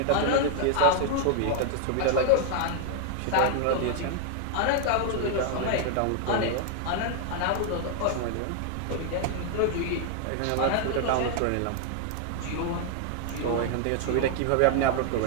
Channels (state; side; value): different; both; correlation 0.00